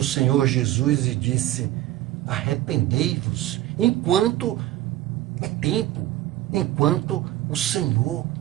Senhor Jesus e disse, arrependei-vos, enquanto é tempo, enquanto o Senhor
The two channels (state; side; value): quieter; left; 15.0 dB